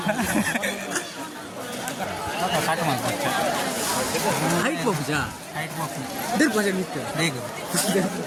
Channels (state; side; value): identical; both; correlation 1.00